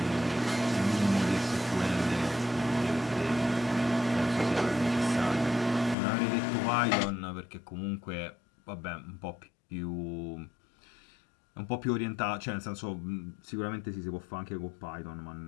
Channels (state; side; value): drops out; right; at 6.0 s